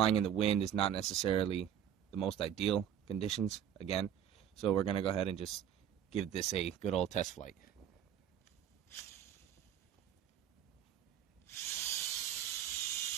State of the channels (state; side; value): quieter; left; 9.5 dB